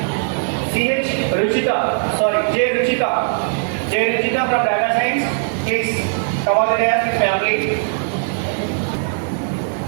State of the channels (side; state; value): left; silent; digital silence